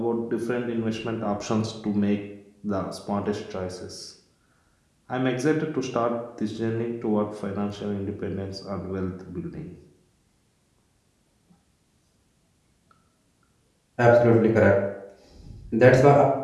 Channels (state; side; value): identical; both; correlation 1.00